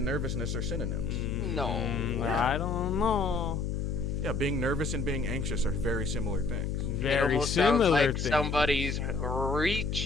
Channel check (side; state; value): left; noise; hum, 1 dB below the sound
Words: nervousness are synonyms. No. I don't know. Yeah, being nervous and being anxious are very similar things. It Very almost sounds similar like thing. somebody's